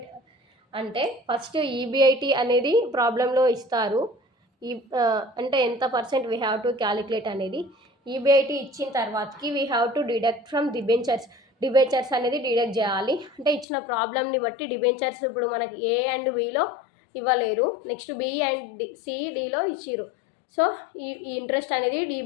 అంటే first EBIT అనేది ప్రాబ్లంలో ఇస్తారు. అంటే ఎంత percent we have to calculate అనేది ఈబిఐటి ఇచ్చిన తర్వాతకి we have to deduct from debentures అనేది డిడక్ట్ చేయాలి. అంటే ఇచ్చిన ప్రాబ్లమ్ని బట్టి డిబెంచర్స్ ఇప్పుడు మనకి ఏ అండ్ బిలో ఇవ్వలేరు, నెక్స్ట్ బి అండ్ సిడిలో ఇచ్చిరు. సో ఈ ఇంట్రెస్ట్ అనేది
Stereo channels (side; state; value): right; drops out; at 13.7 s